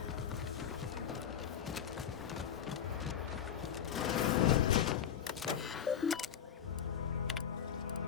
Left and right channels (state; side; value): quieter; right; 8.8 dB